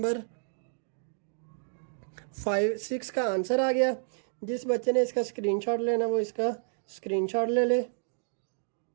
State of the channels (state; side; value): silent; left; digital silence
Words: 6 का आंसर आ गया। जिस बच्चे ने इसका स्क्रीनशॉट लेना वो इसका स्क्रीनशॉट ले ले।